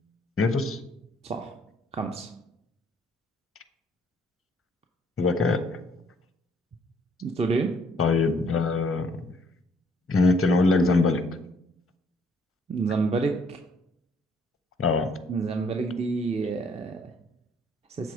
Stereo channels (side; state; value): both; normal; correlation 0.65